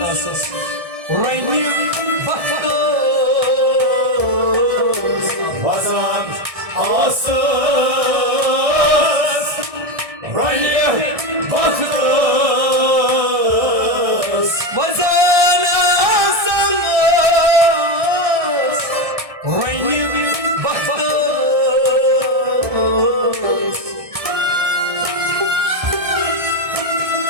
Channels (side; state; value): left; late; 1.6 ms